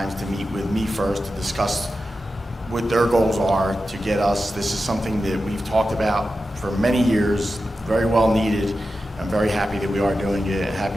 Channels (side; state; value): both; normal; correlation 0.92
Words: to meet with me first to discuss what their goals are to get us. This is something that we've talked about for many years, very well needed. I'm very happy that we are doing it,